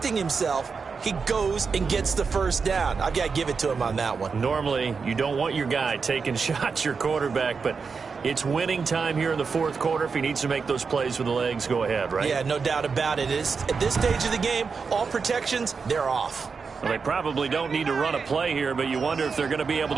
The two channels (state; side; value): quieter; left; 5.2 dB